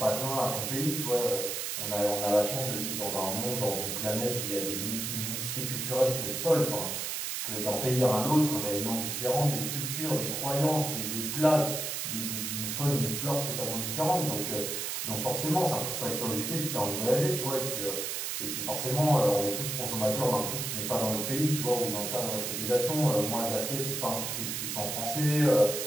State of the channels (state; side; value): noise; right; hiss, 3 dB below the sound